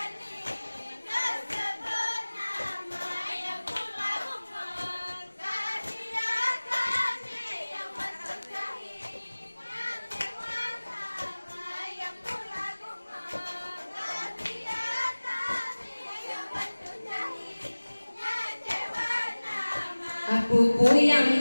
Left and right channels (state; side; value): inverted; both; correlation -1.00